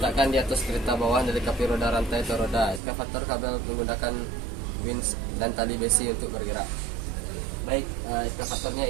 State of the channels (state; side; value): drops out; left; at 2.8 s